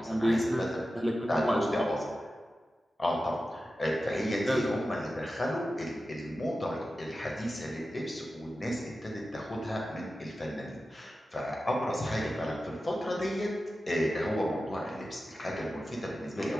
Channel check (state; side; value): normal; both; correlation 0.93